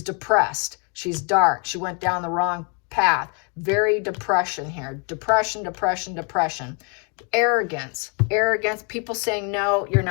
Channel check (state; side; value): quieter; right; 35.1 dB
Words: depressed. She's dark. She went down the wrong path. Very depression here. Depression, depression, depression. Arrogance. Arrogance. People saying, no, you're